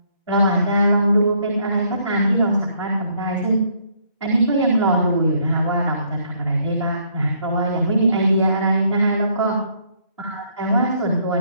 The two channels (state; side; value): inverted; both; correlation -0.67